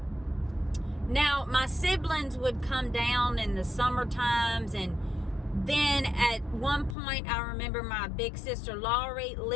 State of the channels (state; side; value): drops out; right; at 7.0 s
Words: Now, my siblings would come down in the summer times, and then at one point, I remember my big sister Laurie